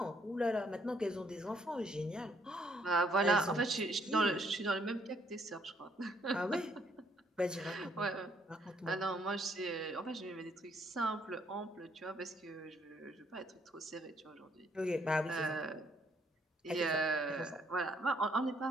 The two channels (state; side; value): normal; both; correlation 0.68